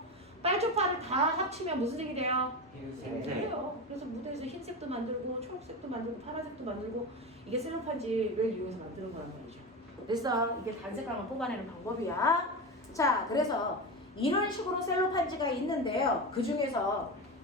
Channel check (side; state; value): both; normal; correlation 0.21